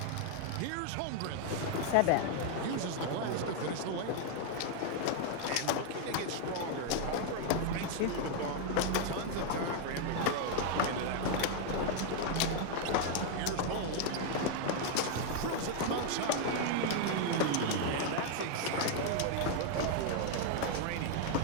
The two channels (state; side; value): different; both; correlation 0.00